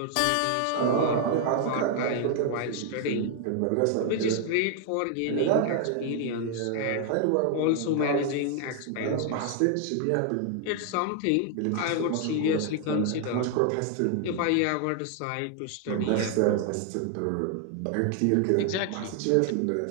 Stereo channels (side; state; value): both; different; correlation 0.00